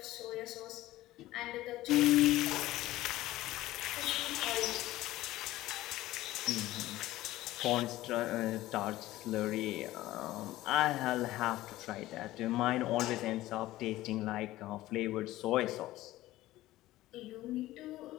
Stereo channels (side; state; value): right; quieter; 16.3 dB